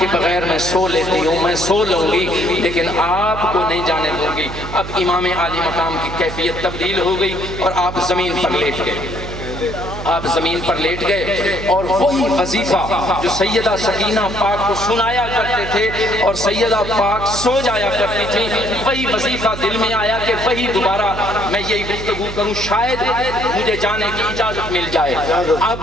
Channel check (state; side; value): noise; right; hum, 9 dB below the sound